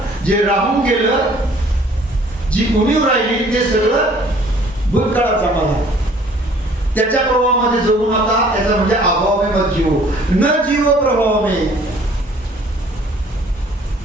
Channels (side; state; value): both; normal; correlation 0.56